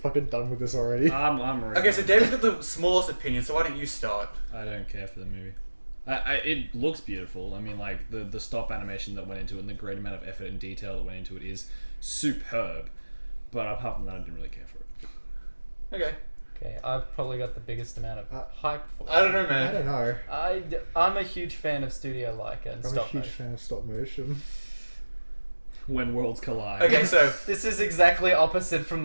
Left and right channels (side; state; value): both; inverted; correlation -1.00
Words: done with this already. I'm ready. Okay, so David's got the smallest opinion, so why don't you start? I don't care for the movie. It looks beautiful. I mean, like, the stop animation that went into it and the great amount of effort and detail that went into it is superb. But apart from that, I didn't really care for it. Okay. Okay, I've probably got the biggest amount of hype for it. I don't know, man. I don't know. I'm a huge fan of Studio Laika and I'm stop a huge motion. fan of stop motion. When worlds collide. Okay, so This is exactly opposite from